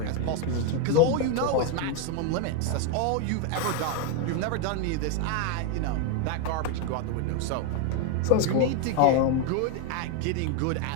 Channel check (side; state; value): both; different; correlation 0.01